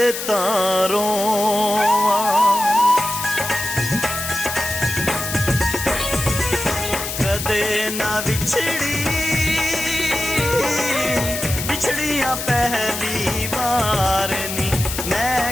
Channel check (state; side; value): noise; left; hiss, 5 dB below the sound